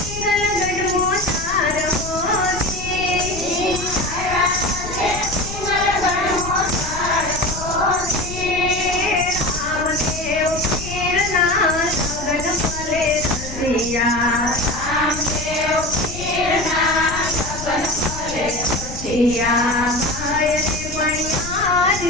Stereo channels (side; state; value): left; noise; rumble, 10 dB below the sound